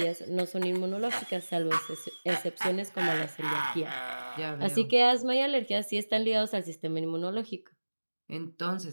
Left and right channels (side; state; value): both; inverted; correlation -1.00